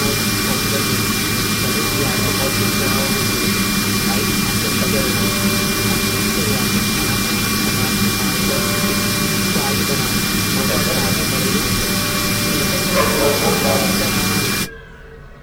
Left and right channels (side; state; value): both; identical; correlation 1.00